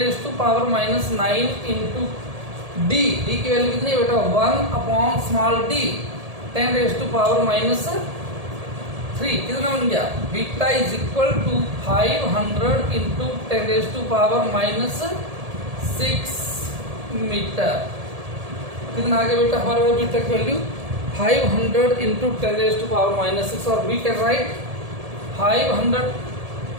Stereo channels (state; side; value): late; left; 1.7 ms